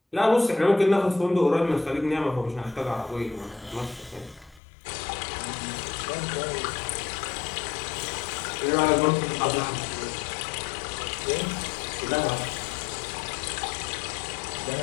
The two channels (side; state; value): right; drops out; at 4.6 s